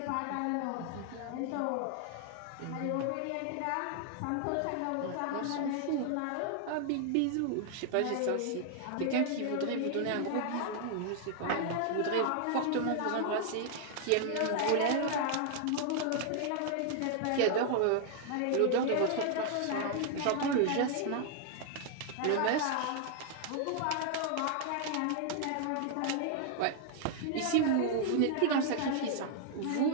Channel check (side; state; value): both; different; correlation 0.00